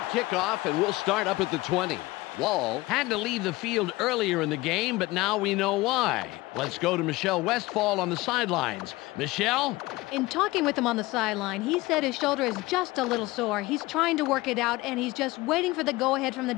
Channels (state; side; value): quieter; right; 20.2 dB